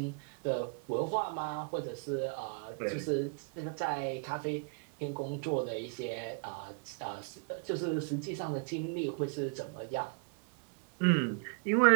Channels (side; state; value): left; quieter; 38.9 dB